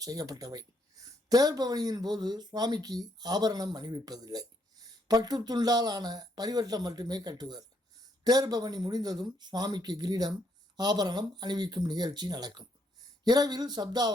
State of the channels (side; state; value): both; normal; correlation 0.73